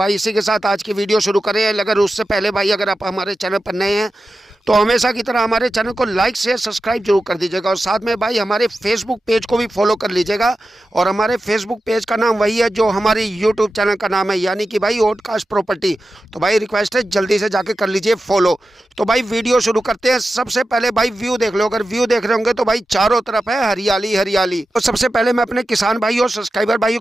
इसी के साथ आज की वीडियो शुरू करें। अगर उससे पहले भाई अगर आप हमारे चैनल पर नए हैं तो हमेशा की तरह हमारे चैनल को लाइक शेयर सब्सक्राइब जरूर कर दीजिएगा और साथ में भाई हमारे फेसबुक पेज को भी फॉलो कर लीजिएगा। और हमारे फेसबुक पेज का नाम वही है जो हमारे यूट्यूब चैनल का नाम है, यानी कि भाई ओडकास्ट प्रॉपर्टी। तो भाई रिक्वेस्ट है जल्दी से जाके कर लीजिए फॉलो। तो भाई वीडियो शुरू करते हैं। सबसे पहले भाई व्यू देख लो। अगर व्यू देख रहे होंगे तो भाई चारों तरफ है हरियाली हरियाली। तो सबसे पहले मैं अपने किसान भाई और सब्सक्राइबर भाइयों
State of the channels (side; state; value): both; normal; correlation 0.92